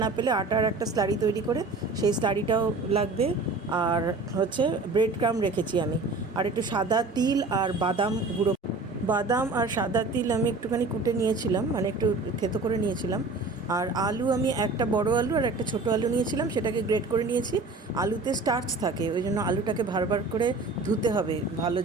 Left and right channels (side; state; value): left; quieter; 3.5 dB